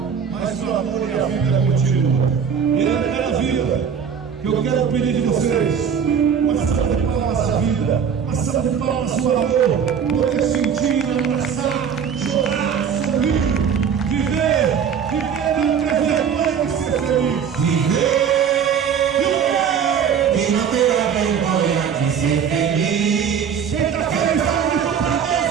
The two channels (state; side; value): quieter; left; 7.3 dB